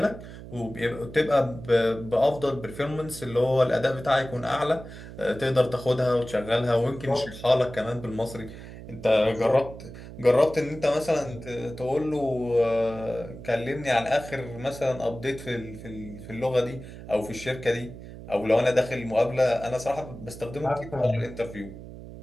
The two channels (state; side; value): noise; right; hum, 14 dB below the sound